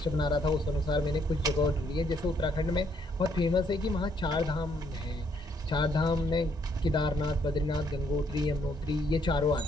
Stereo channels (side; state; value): both; normal; correlation 0.70